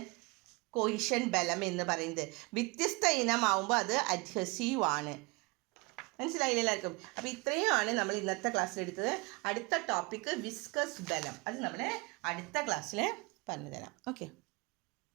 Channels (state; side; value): quieter; left; 27.4 dB